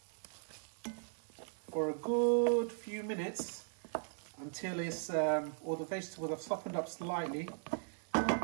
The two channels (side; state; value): left; silent; digital silence